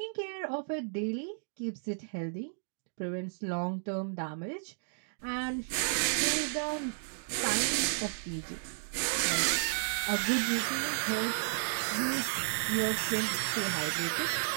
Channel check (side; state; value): left; silent; digital silence